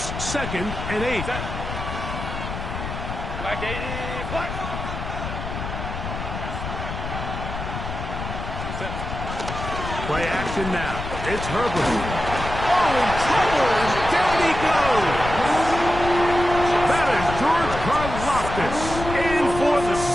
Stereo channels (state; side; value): noise; left; rumble, 6 dB below the sound